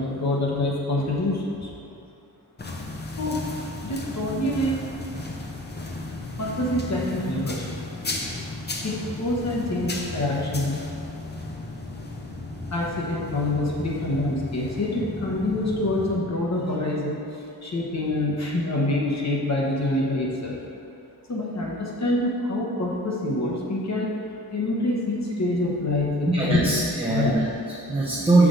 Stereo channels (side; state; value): both; normal; correlation 0.48